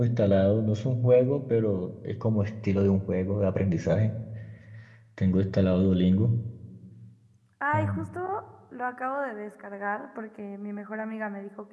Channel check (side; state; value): both; identical; correlation 1.00